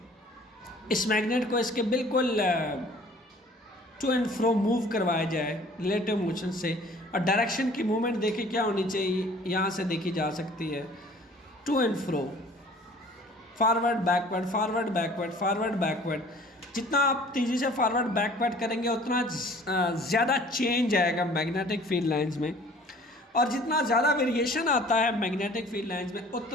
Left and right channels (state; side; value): normal; both; correlation 0.51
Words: इस मैग्नेट को इसके बिल्कुल टू एंड फ्रो मूव करवाया जाए रिलेटिव मोशन से। और डायरेक्शन की मूवमेंट देखिए क्या होनी चाहिए, यहाँ से देखी जा सकती है, to and fro, forward backward, forward backward, forward backward. जितना आप तेज़ी से फॉरवर्ड बैकवर्ड करेंगे उतना ज़्यादा चेंज आएगा मैग्नेटिक फील्ड लाइंस में, और जितना ज़्यादा वेरिएशन आता है मैग्नेटिक फील्ड लाइंस में